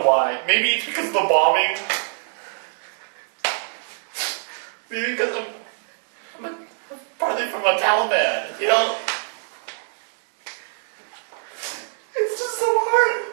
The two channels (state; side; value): silent; left; digital silence